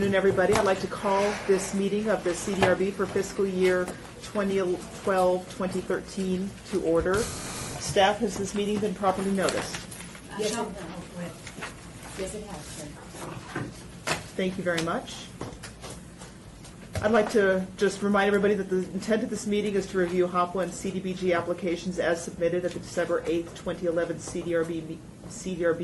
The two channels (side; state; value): both; identical; correlation 1.00